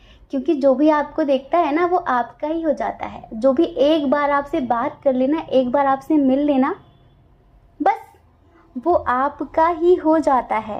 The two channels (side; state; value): both; identical; correlation 1.00